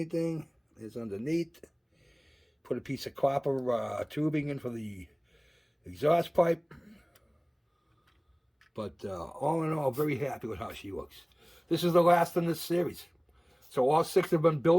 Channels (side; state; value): both; identical; correlation 1.00